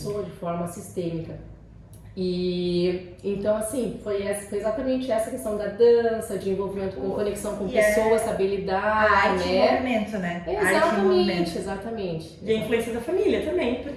de forma sistêmica. E então, assim, foi exatamente essa questão da dança, de envolvimento com conexão com pessoas, habilidade, arte e movimento, né? Exatamente. E a influência da família também,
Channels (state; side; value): identical; both; correlation 1.00